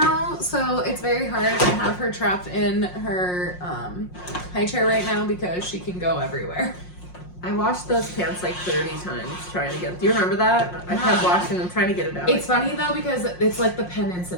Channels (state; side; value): late; right; 5.6 ms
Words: so it's very hard to have her trapped in her high chair right now because she can go everywhere. I washed those pants like 30 times trying to get. Do you remember that? I kept washing them, trying to get it out. It's funny though because it's like the pen